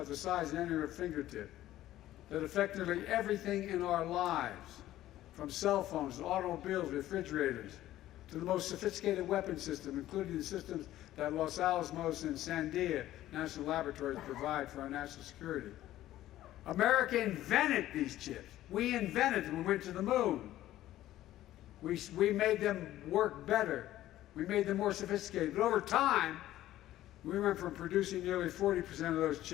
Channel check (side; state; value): right; quieter; 14.1 dB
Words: the size of any of your fingertip that affect nearly everything in our lives, from cell phones to automobiles, refrigerators, to the most sophisticated weapon system, including the systems that Los Alamos and Sandia National Laboratories provide for our national security. America invented these chips. We invented them. We went to the moon. We made them work better. We made them more sophisticated. But over time, we went from producing nearly 40% of those